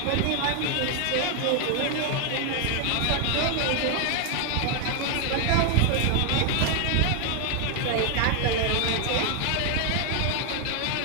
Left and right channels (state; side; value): different; both; correlation 0.00